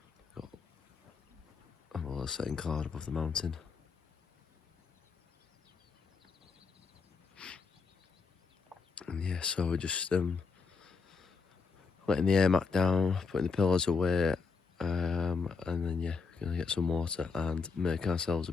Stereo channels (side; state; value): right; quieter; 4.9 dB